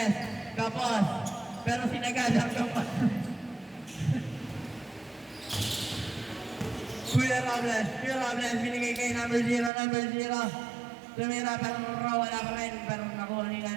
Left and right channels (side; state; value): left; drops out; at 9.7 s